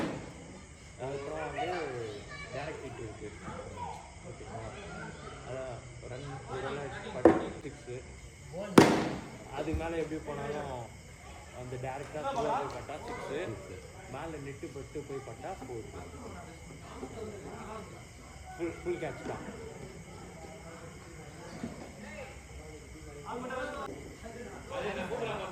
அதுக்கப்புறம் வந்து டேரக்ட் ஹிட் இருக்குது ஓகேங்களா அதான் ரன் ஒரு சிக்ஸு அதுக்கு மேலே எப்படி போனாலும் அந்த டேரெக்டாக போய் பட்டா 6 மேலே நெட்டு பட்டு போய் பட்டா 4 ஃபுல் கேட்ச் தான்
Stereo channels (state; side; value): identical; both; correlation 1.00